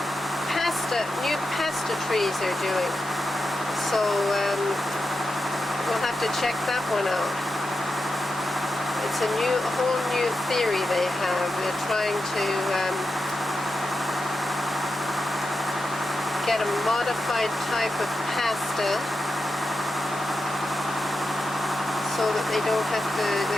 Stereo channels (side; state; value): both; normal; correlation 0.89